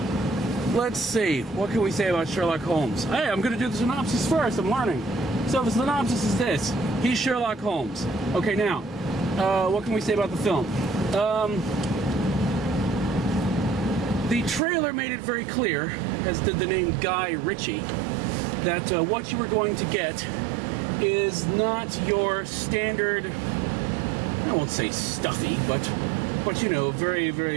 let's see, what can we say about Sherlock Holmes? Hey, I'm going to do the synopsis first, I'm learning. So the synopsis is this: he's Sherlock Holmes. Okay, now, what can we say about the film? The trailer made it very clear, as did the name Guy Ritchie, that what you were going to get is not your standard, I won't say stuffy, but you know, very,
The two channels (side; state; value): left; drops out; at 14.6 s